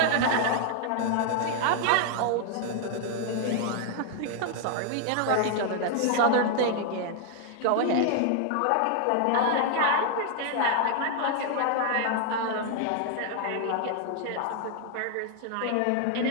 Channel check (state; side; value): different; both; correlation 0.00